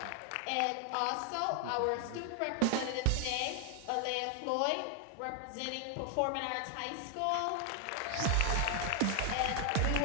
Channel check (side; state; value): both; different; correlation 0.00